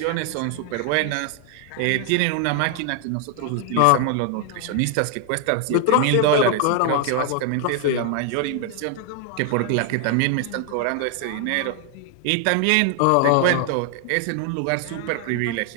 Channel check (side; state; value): both; different; correlation 0.00